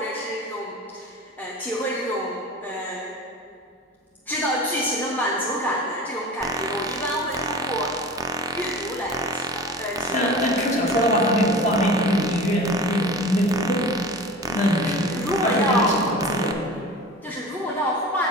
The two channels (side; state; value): both; normal; correlation 0.36